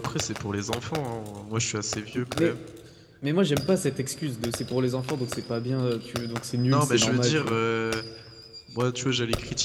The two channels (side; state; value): both; identical; correlation 1.00